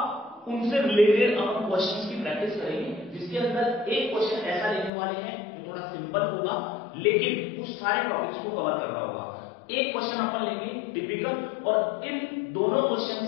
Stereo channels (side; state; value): right; drops out; at 4.9 s